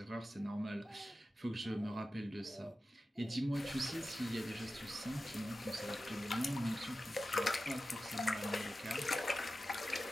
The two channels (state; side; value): normal; both; correlation 0.93